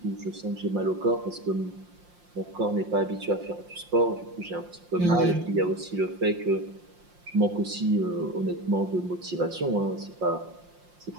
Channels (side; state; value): left; late; 5.7 ms